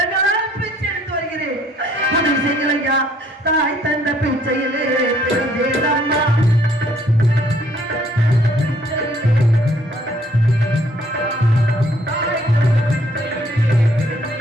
பிச்சை எடுத்து வருகிறேன். உதவி செய்யுங்கள் ஐயா. தாய் தந்த பிச்சையிலே பிறந்தேனம்மா.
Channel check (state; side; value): normal; both; correlation 0.63